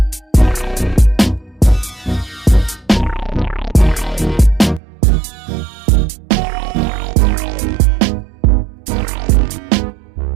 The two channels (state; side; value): drops out; left; at 4.8 s